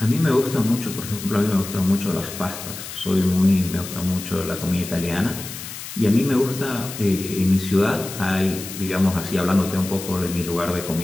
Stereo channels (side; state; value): left; noise; hiss, 10 dB below the sound